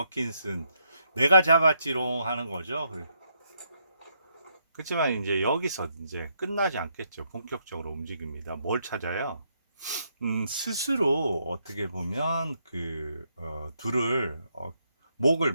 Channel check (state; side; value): inverted; both; correlation -0.76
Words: 내가 잡았지롱 하는 거죠. 그렇지만 이제 여기서 이제 끝나지 않겠죠. 본격적으로 움직입니다. 뭘 찾아요? 스스로 어떻게 보면 둘을 목을